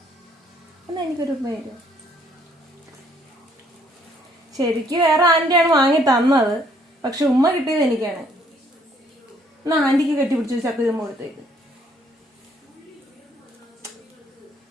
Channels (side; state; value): both; normal; correlation 0.65